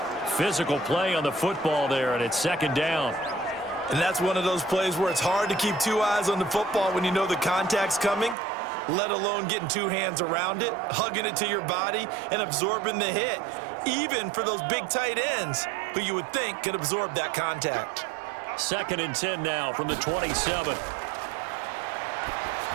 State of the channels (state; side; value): drops out; left; at 8.3 s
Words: Physical play on the football there, and it's 2nd down. And that's one of those plays where it's hard to keep two eyes on the football when you know the contact's coming, let alone getting two hands around it, hugging it to your body, and absorbing the hit, even for those big tight ends who you would think could absorb that contact. 2nd and 10 now from the 27.